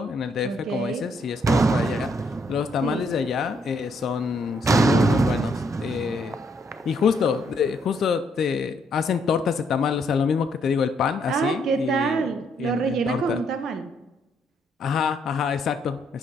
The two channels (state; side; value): normal; both; correlation 0.72